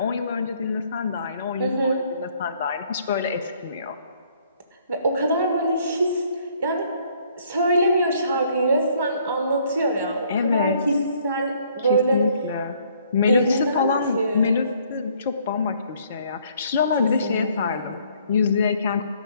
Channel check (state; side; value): inverted; both; correlation -0.63